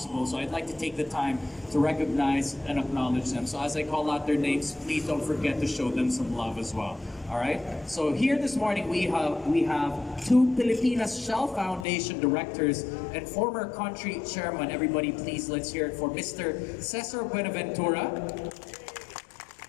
So I'd like to take the time to recognize and acknowledge them. So as I call out their names, please don't forget to show them some love as well. All right. So here this morning we have 2 Pilipinas Shell Foundation directors and former country chairman. Everybody, please let's hear it for Mr. Cesar Buenaventura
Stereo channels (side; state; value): right; drops out; at 11.9 s